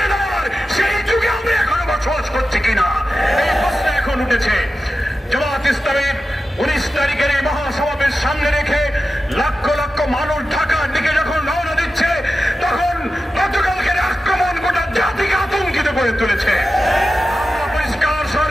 দেওয়ার সেই যুগে আমরা এখনো বসবাস করছি কিনা, এই প্রশ্ন এখন উঠেছে। জামাত ইসলামের 19 তারিখের এই মহাসমাবেশ সামনে রেখে লক্ষ লক্ষ মানুষ ঢাকার দিকে যখন রওনা দিচ্ছে, তখন গতকালকের আক্রমণ গোটা জাতিকে আতঙ্কিত করে তুলেছে। আমরা পরিষ্কার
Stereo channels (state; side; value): normal; both; correlation 0.92